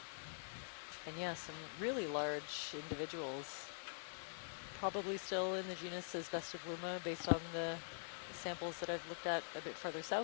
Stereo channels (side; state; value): right; silent; digital silence